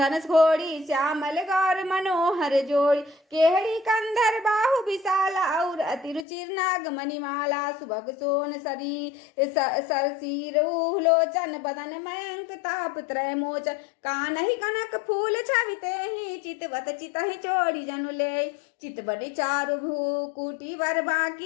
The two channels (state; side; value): drops out; right; at 6.2 s